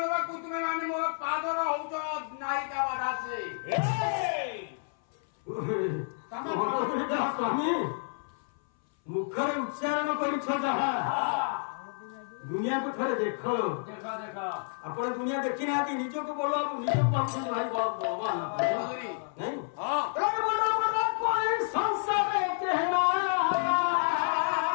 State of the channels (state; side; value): silent; right; 58 dB below the other